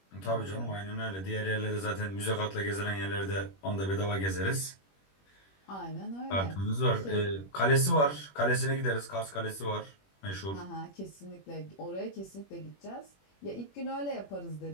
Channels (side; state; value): right; late; 21 ms